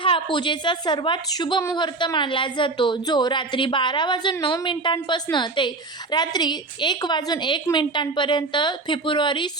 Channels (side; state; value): left; quieter; 3.5 dB